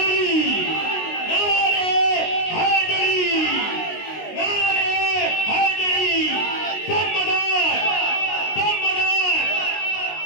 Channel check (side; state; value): right; late; 19 ms